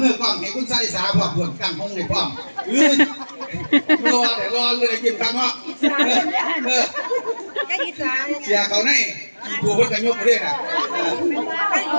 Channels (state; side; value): inverted; both; correlation -1.00